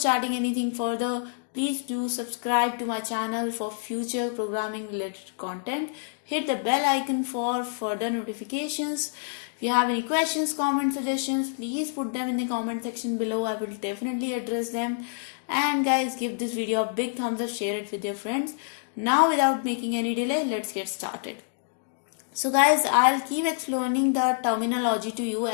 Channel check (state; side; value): silent; right; digital silence